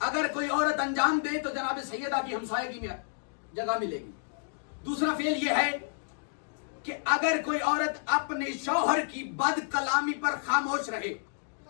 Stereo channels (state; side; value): silent; right; digital silence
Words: اگر کوئی عورت انجام دے تو جناب سیدہ کی ہمسائیگی میں جگہ ملے گی. دوسرا فعل یہ ہے کہ اگر کوئی عورت اپنے شوہر کی بد کلامی پر خاموش رہے.